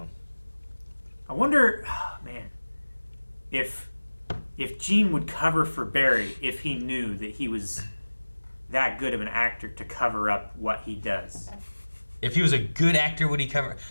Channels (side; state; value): both; inverted; correlation -1.00